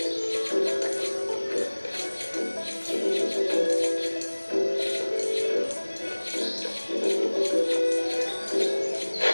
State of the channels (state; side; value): inverted; both; correlation -1.00